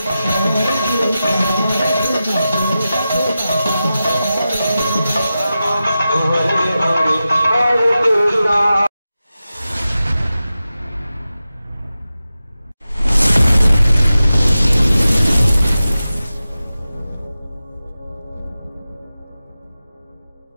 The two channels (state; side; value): inverted; both; correlation -0.93